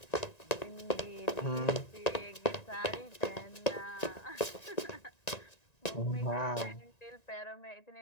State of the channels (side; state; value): right; late; 1.9 ms